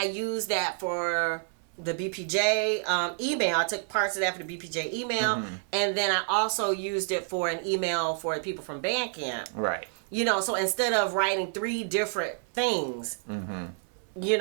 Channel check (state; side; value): silent; left; 59 dB below the other